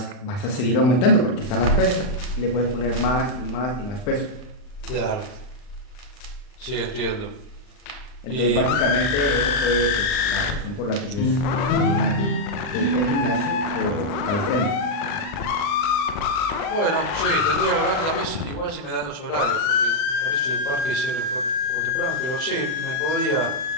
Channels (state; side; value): late; right; 40 ms